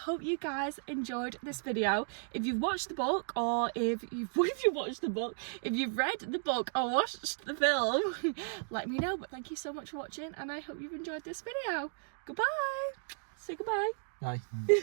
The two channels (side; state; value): left; silent; digital silence